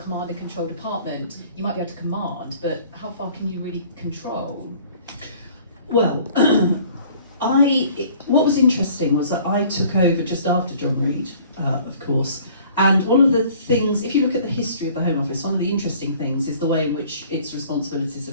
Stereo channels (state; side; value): inverted; both; correlation -0.53